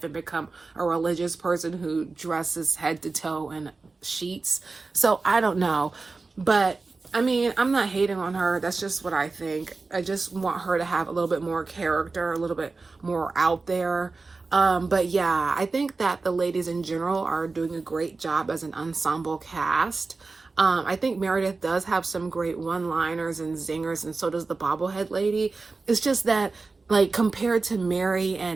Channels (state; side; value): quieter; left; 3.9 dB